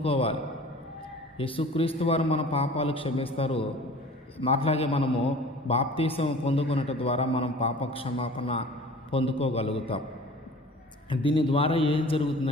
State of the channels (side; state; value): both; normal; correlation 0.44